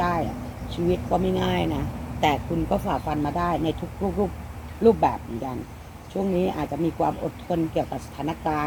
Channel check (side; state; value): both; identical; correlation 1.00